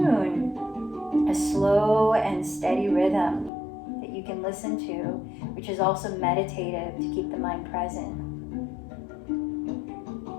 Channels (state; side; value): drops out; right; at 3.5 s